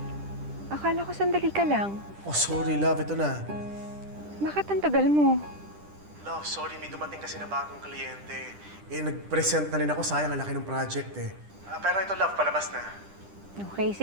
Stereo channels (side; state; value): left; late; 10 ms